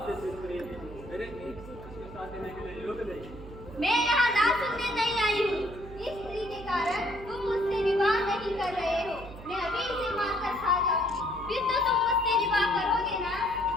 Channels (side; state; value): right; noise; hum, 15 dB below the sound